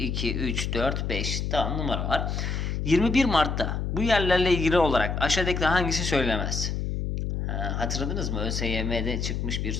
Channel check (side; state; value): left; noise; hum, 2 dB below the sound